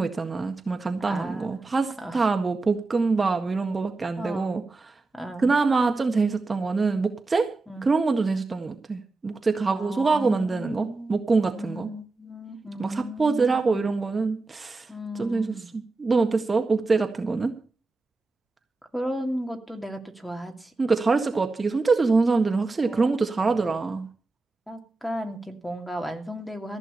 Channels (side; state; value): left; quieter; 3.5 dB